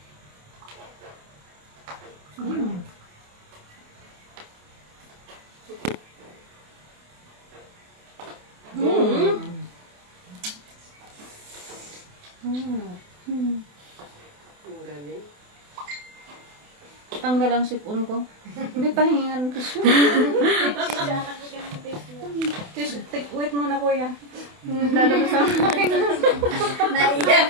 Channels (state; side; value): late; left; 28 ms